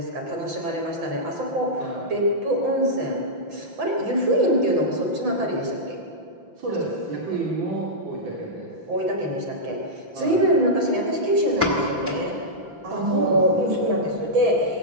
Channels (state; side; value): late; left; 5.9 ms